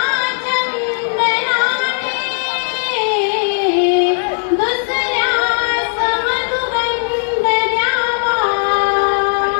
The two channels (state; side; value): silent; right; 61 dB below the other